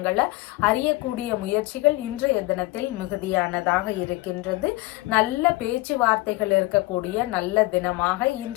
அறியக்கூடிய முயற்சிகள் இன்றைய தினத்தில் மிகுதியானதாக இருக்கின்றது. நல்ல பேச்சுவார்த்தைகள் இருக்கக்கூடிய நல்ல தினமாக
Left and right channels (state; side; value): quieter; right; 20.7 dB